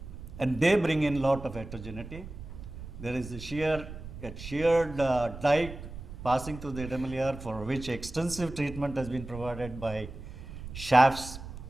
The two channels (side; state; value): right; noise; rumble, 12 dB below the sound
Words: And they bring in lot of heterogeneity. There is a sheared dike passing through the Idamalayar, for which extensive treatment has been provided by shafts